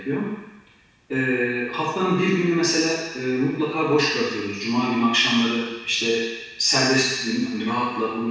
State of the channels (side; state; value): both; identical; correlation 1.00